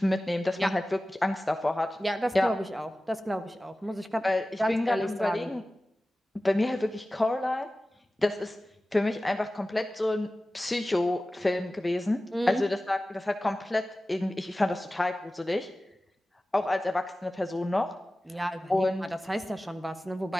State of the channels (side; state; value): both; normal; correlation 0.96